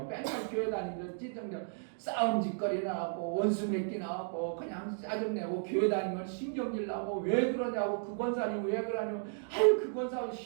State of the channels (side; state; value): left; silent; digital silence